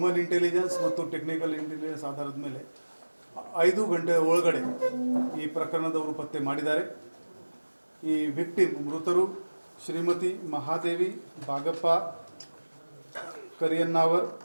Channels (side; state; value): both; inverted; correlation -1.00